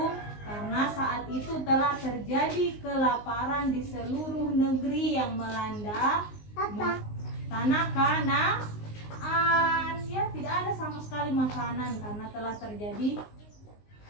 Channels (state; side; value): late; right; 19 ms